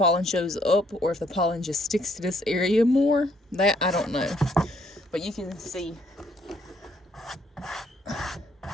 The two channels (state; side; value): normal; both; correlation 0.68